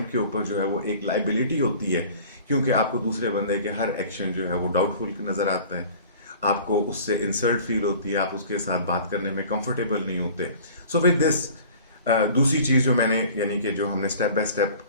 के ऊपर जो है वो एक लाइबिलिटी होती है, क्योंकि आपको दूसरे बंदे के हर एक्शन जो है वो डाउटफुल नज़र आता है, आपको उससे इंसल्ट फील होती है, आप उसके साथ बात करने में कंफर्टेबल नहीं होते। सो विद दिस, दूसरी चीज़ जो मैंने, यानी कि जो हमने स्टेप बाय स्टेप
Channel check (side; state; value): both; inverted; correlation -0.45